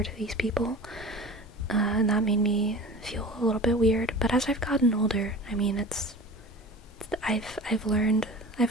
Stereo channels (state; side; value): normal; both; correlation 0.37